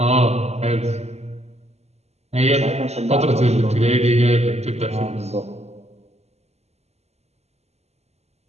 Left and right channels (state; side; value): late; left; 0.31 ms